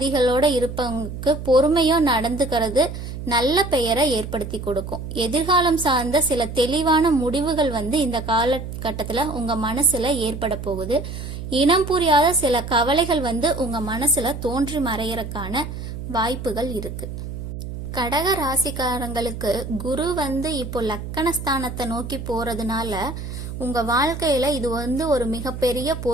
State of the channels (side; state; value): right; noise; hum, 8 dB below the sound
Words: இருப்பவங்களுக்கு பொறுமையோ நடந்துக்கிறது நல்ல பெயரை ஏற்படுத்தி கொடுக்கும். எதிர்காலம் சார்ந்த சில தெளிவான முடிவுகள் வந்து இந்த காலகட்டத்துல உங்க மனசுல ஏற்பட போகுது. இனம் புரியாத சில கவலைகள் வந்து உங்க மனசுல தோன்றி மறையறதுக்கான வாய்ப்புகள் இருக்கு. கடக ராசிக்காரங்களுக்கு குரு வந்து இப்போ லக்கணஸ்தானத்தை நோக்கி போறதுனால உங்க வாழ்க்கையில இது வந்து ஒரு மிகப்பெரிய